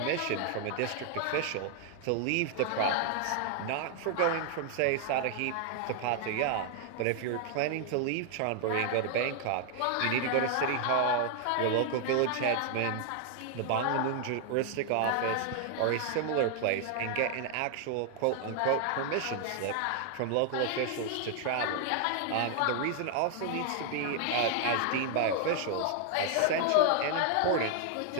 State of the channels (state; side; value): different; both; correlation 0.00